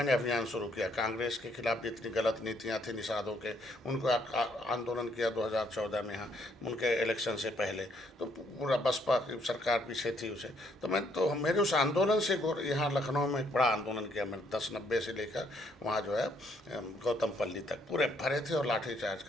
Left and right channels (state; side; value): normal; both; correlation 0.69